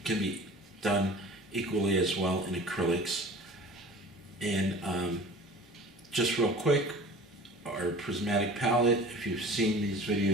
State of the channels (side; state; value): both; normal; correlation 0.42